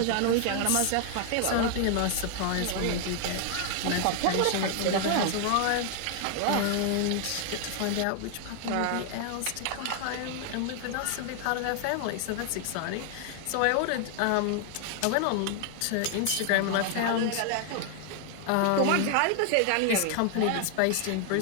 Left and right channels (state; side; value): different; both; correlation 0.00